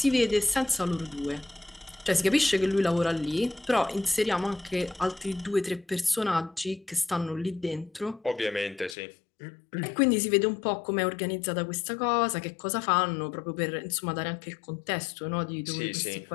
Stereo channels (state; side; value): drops out; right; at 9.0 s